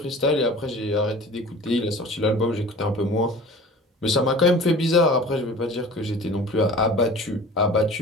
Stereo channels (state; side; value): normal; both; correlation 0.41